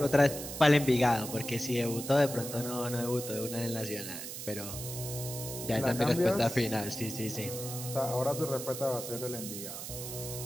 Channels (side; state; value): right; noise; hiss, 8 dB below the sound